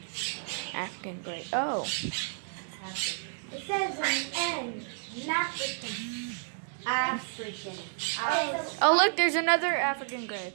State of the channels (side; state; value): left; silent; digital silence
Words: African gray. Oh. It says an N. African. African. Oh, look, there's another African gray.